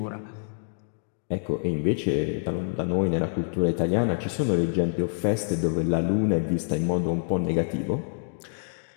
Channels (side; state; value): right; silent; digital silence